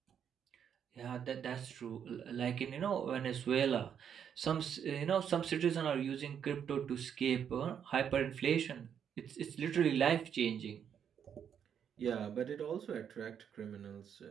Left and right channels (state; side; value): quieter; left; 8.2 dB